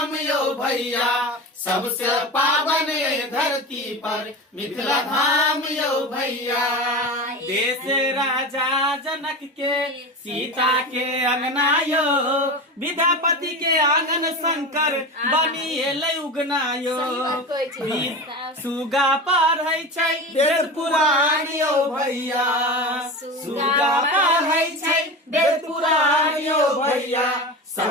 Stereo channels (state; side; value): normal; both; correlation 0.27